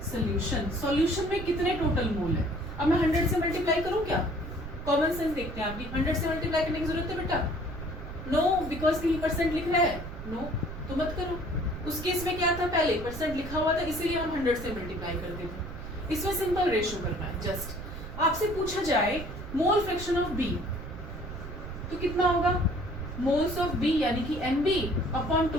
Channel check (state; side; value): noise; right; rumble, 10 dB below the sound